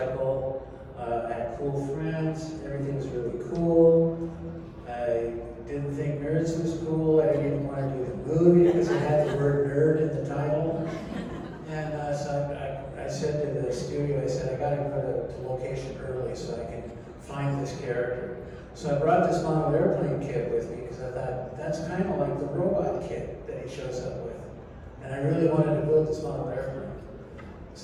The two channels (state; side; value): identical; both; correlation 1.00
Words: I had cool friends, everything was really cool. I didn't think Nerds was cool. I didn't want to do the movie because it had the word nerd in the title. And so I said to the studio, I said, I got to go to location early so I can find this character. So I brought this model airplane kit with me because I thought that's kind of like the robot kit that he shows up with. And I really wanted to build this model airplane.